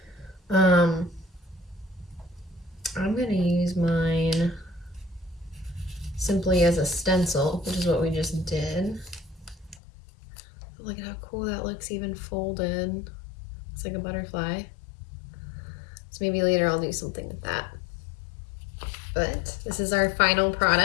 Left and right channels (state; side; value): drops out; right; at 9.8 s